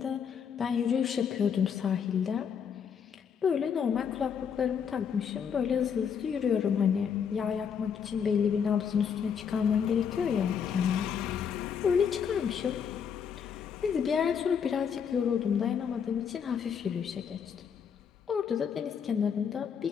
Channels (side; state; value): right; quieter; 7.2 dB